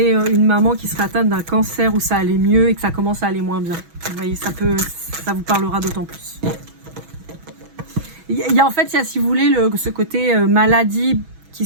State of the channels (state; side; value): late; left; 6.1 ms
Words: une maman qui serait atteinte d'un cancer où ça allait mieux et que ça commence à aller moins bien. Vous voyez, ça vous parlera d'autant plus. Il y a en fait, si vous voulez, ce côté maladie qui